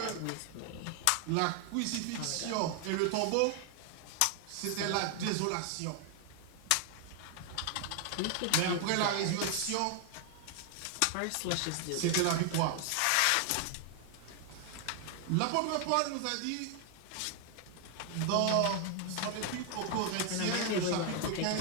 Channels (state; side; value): different; both; correlation 0.00